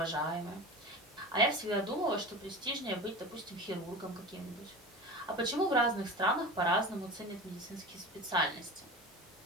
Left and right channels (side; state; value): both; normal; correlation 0.31